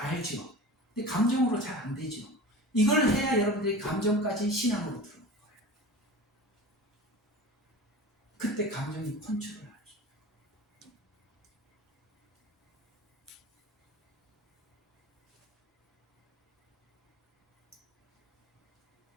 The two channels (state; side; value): normal; both; correlation 0.35